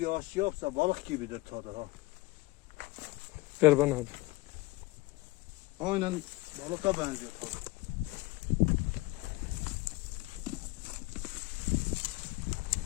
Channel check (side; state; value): right; quieter; 21.2 dB